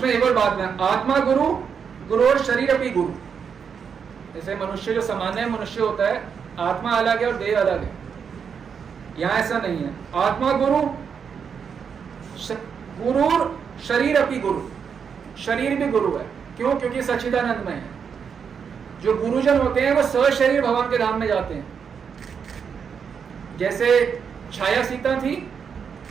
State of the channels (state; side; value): quieter; left; 6.7 dB